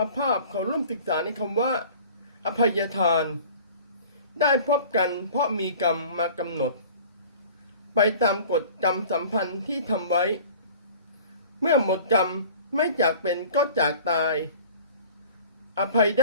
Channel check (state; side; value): inverted; both; correlation -0.45